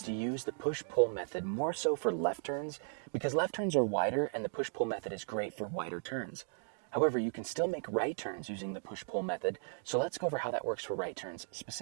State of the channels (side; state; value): left; silent; digital silence